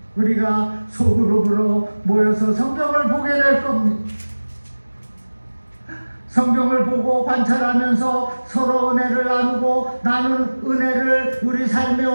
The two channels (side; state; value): both; inverted; correlation -1.00